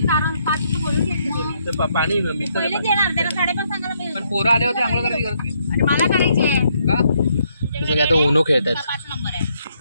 पाणी पहिलेच येणार त्याला 5:30 सांगायला मिळेल. पण पोरं आले होते आंघोळ करायची गरज नाही. आणि मला करायची आहे. का तुझं काय तो उनो खेळतात. 5 नंबर आहे.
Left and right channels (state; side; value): inverted; both; correlation -0.73